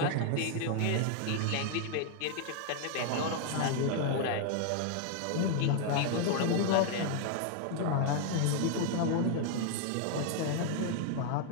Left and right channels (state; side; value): different; both; correlation 0.00